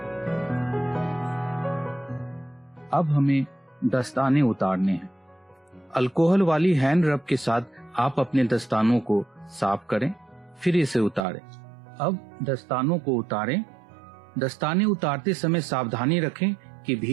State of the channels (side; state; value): left; drops out; at 11.2 s